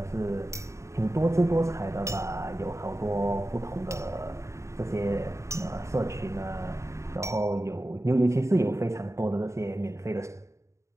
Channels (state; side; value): late; left; 0.14 ms